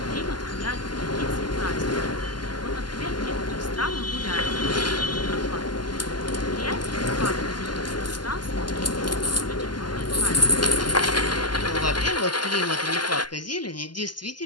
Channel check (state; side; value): late; right; 0.71 ms